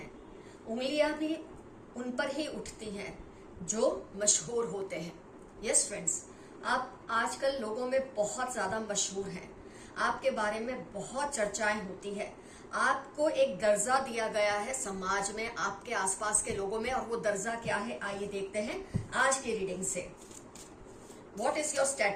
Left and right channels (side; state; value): both; identical; correlation 1.00